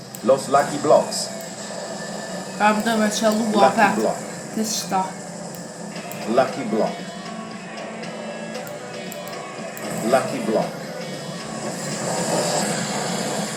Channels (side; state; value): both; identical; correlation 1.00